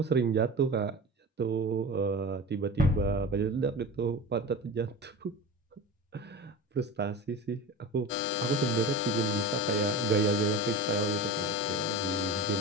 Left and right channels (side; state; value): both; normal; correlation 0.30